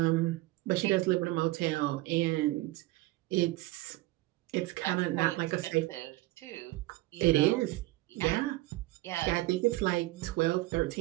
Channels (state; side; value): quieter; left; 19.0 dB